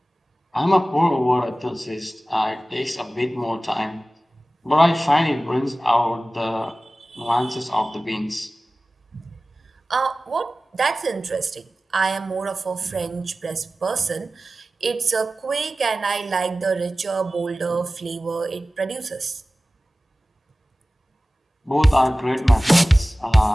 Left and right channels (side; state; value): both; normal; correlation 0.96